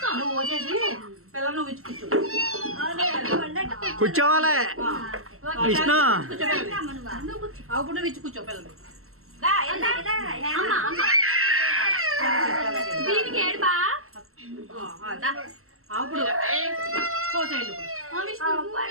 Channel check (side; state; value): left; late; 0.63 ms